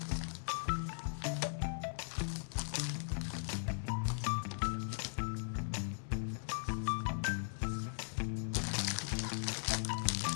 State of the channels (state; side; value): silent; right; digital silence